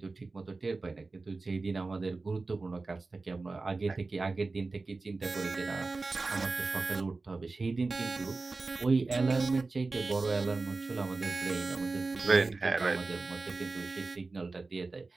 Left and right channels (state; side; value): quieter; left; 3.7 dB